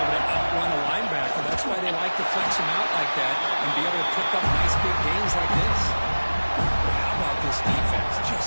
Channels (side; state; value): both; inverted; correlation -1.00